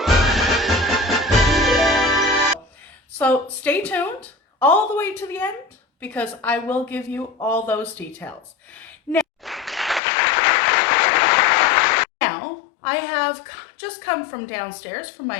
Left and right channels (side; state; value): right; drops out; at 10.0 s